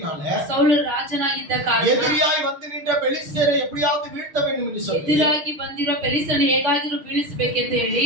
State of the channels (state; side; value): late; left; 6.5 ms